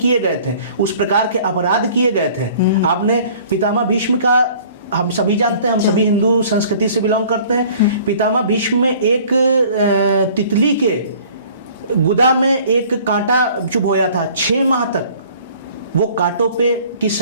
गए थे, उस प्रकार के अपराध किए गए थे। आपने पितामह भीष्म का हम सभी जानते हैं, हम सभी हिंदू संस्कृति से बिलोंग करते हैं। पितामह भीष्म में एक तितली के गुदा में एक कांटा चुभ होया था, 6 माह तक वो कांटों पे की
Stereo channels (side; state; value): both; inverted; correlation -0.52